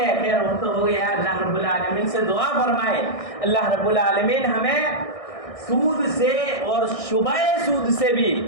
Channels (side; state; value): right; late; 1.6 ms